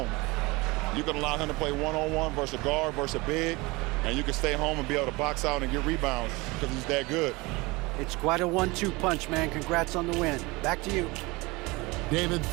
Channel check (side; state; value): left; quieter; 23.7 dB